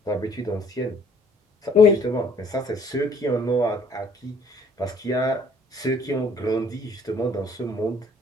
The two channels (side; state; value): both; normal; correlation 0.59